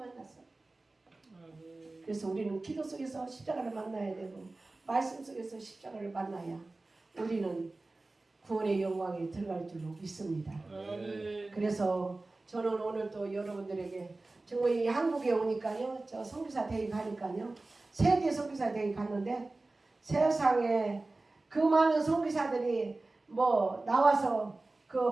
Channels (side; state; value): left; quieter; 3.2 dB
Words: 그래서 우리는 기도 속에서 십자가를 만나야 되고 말씀 속에서 십자가를 만나야 우리는 구원의 영광에 들어갈 줄로 믿습니다. 그래서 저는 오늘 또 여러분들에게 정말 이 한국에 오니까요, 저 선교사 대회 가니까요, 세계 선교사 대회 갔는데 세상에 그 많은 선교사들이 뭐 나와서